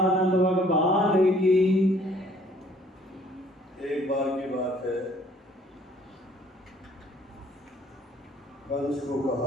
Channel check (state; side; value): normal; both; correlation 0.59